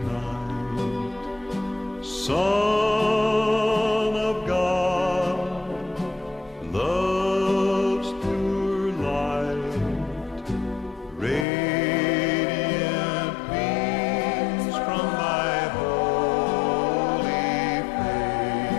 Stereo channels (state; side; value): drops out; right; at 11.5 s